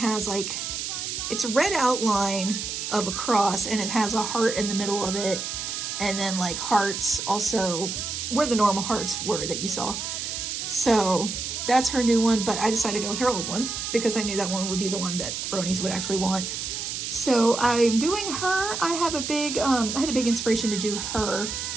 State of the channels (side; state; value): right; noise; hiss, 4 dB below the sound